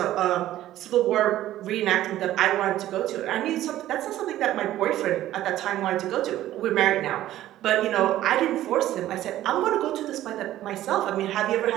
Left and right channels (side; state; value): left; quieter; 13.7 dB